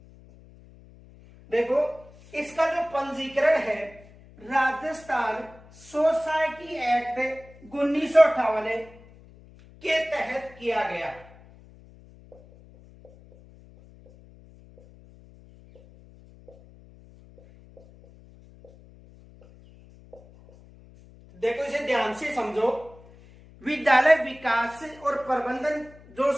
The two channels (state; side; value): noise; left; hum, 23 dB below the sound